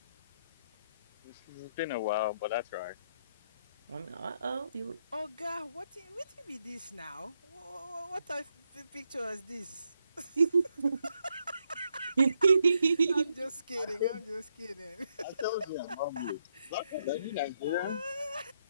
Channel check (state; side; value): inverted; both; correlation -0.78